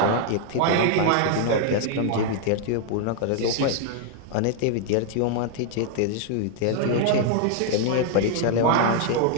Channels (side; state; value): both; different; correlation 0.00